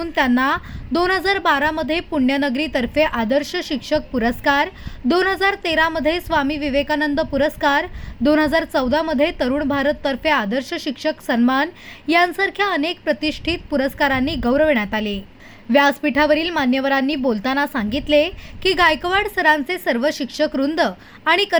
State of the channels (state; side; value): identical; both; correlation 1.00